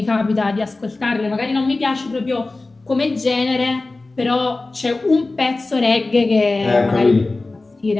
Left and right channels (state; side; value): quieter; right; 3.3 dB